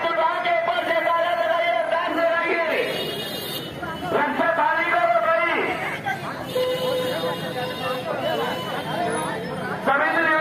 उठा के ऊपर से ताला लगाइए, रफ्तार से रहिए, रास्ता खाली करो भाई। सभी से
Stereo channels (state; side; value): identical; both; correlation 1.00